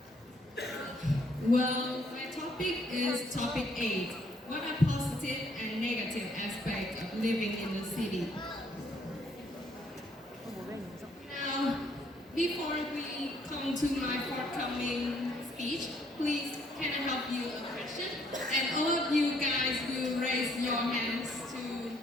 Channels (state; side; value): normal; both; correlation 0.67